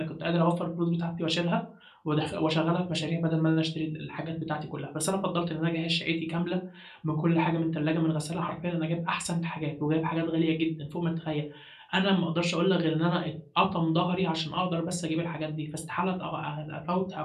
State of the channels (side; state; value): both; identical; correlation 1.00